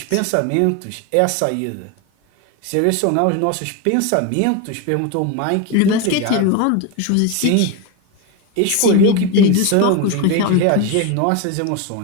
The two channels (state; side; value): different; both; correlation 0.03